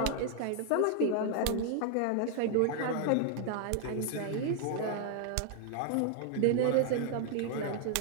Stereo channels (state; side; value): different; both; correlation 0.00